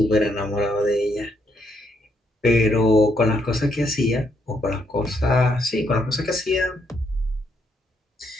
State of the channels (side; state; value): both; normal; correlation 0.74